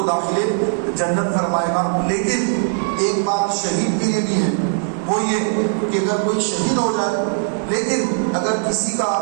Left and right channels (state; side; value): silent; left; digital silence